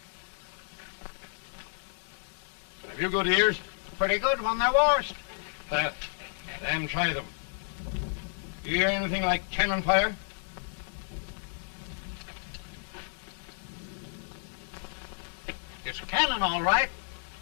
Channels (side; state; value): right; silent; digital silence